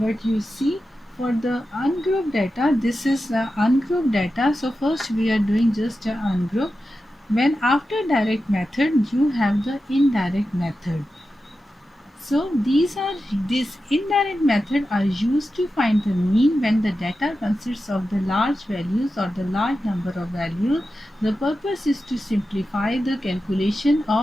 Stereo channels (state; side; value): normal; both; correlation 0.91